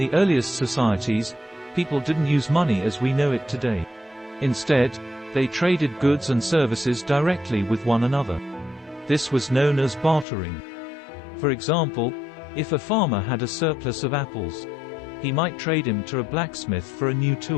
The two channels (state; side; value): drops out; right; at 10.2 s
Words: earliest societies, people didn't use money as we know it today. Instead, they traded goods and services directly with one another. This was known as bartering. For example, if a farmer had a surplus of apples, he might trade him to a blacksmith for a new